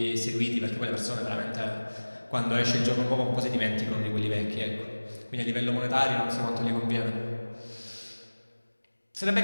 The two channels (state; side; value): inverted; both; correlation -1.00